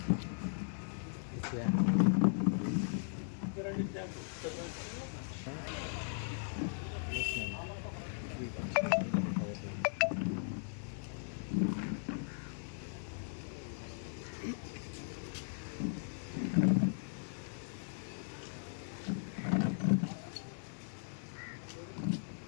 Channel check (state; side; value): silent; right; digital silence